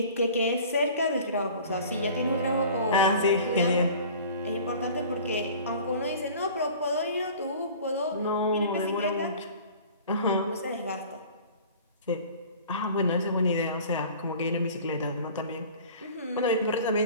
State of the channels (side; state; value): both; inverted; correlation -0.44